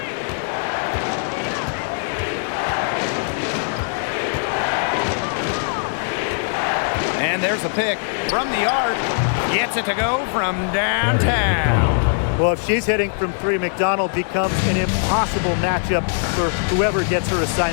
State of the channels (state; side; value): silent; right; digital silence